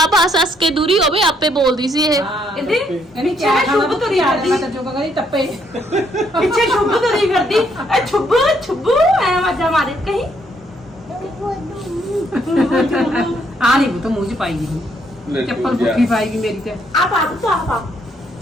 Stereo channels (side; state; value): both; normal; correlation 0.71